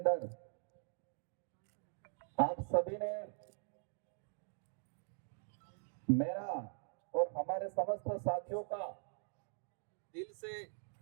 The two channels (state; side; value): silent; left; digital silence